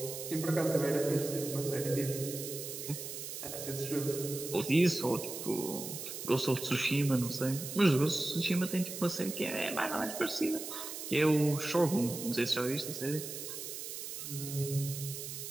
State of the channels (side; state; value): right; noise; hiss, 7 dB below the sound